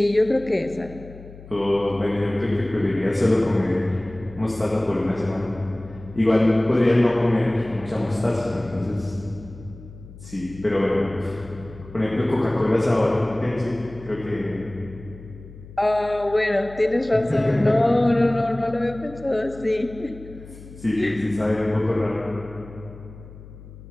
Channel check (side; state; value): left; noise; hum, 17 dB below the sound